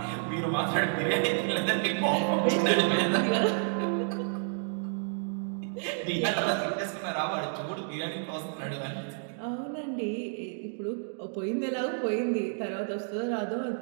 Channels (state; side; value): silent; left; digital silence